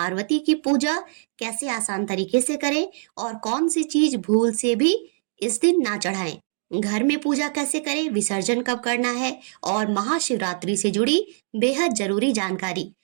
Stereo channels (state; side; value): silent; left; digital silence